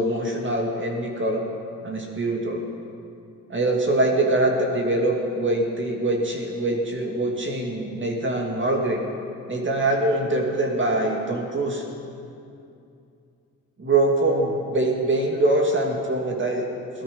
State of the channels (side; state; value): both; normal; correlation 0.14